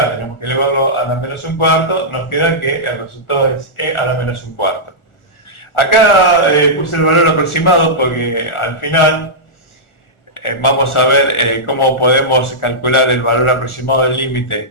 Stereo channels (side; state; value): right; late; 1.4 ms